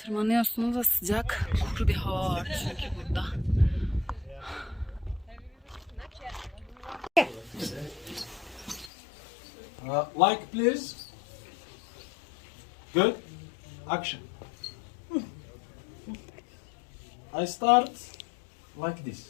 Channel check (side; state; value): right; drops out; at 8.9 s